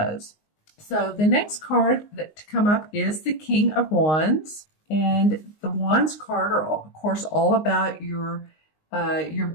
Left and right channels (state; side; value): late; right; 19 ms